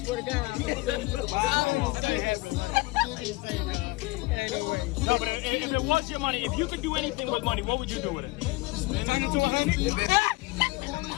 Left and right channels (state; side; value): quieter; right; 22.3 dB